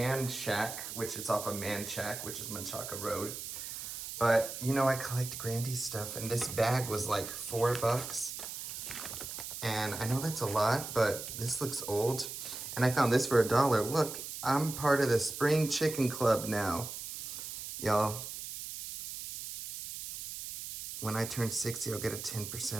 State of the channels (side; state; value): right; noise; hiss, 8 dB below the sound